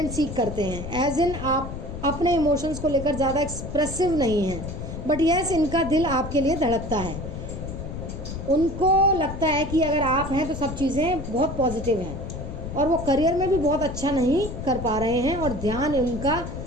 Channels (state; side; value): noise; left; rumble, 7 dB below the sound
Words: सीक करते हैं, एज इन आप अपने इमोशंस को लेकर ज़्यादा एक्सप्रेसिव नहीं हैं। बट यस, इनका दिल आपके लिए धड़कता है। उनको लगता है कि अगर आप हैं तो सब चीज़ें बहुत पॉजिटिव हैं, और वो करियर में भी बहुत अच्छा नहीं कर पा रहे हैं, और ध्यान उनका